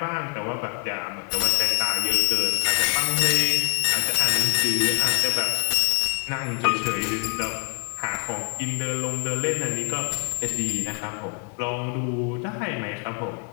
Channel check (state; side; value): quieter; right; 32.0 dB